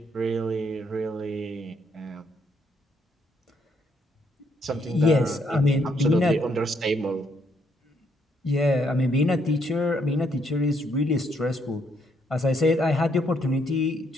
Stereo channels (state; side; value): normal; both; correlation 0.72